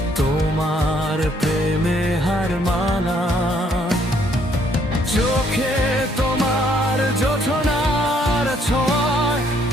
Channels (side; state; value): both; normal; correlation 0.67